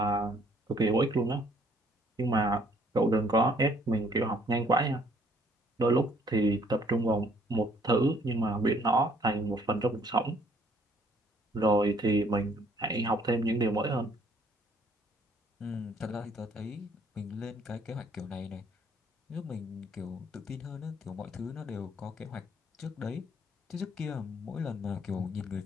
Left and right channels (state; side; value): normal; both; correlation 0.62